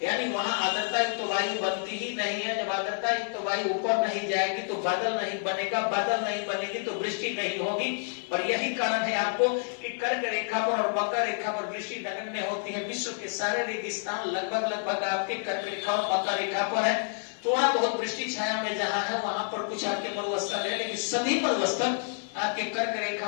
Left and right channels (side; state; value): right; silent; 59 dB below the other